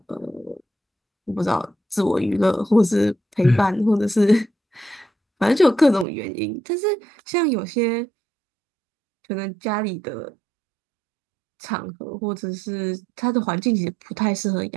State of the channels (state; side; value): drops out; left; at 6.1 s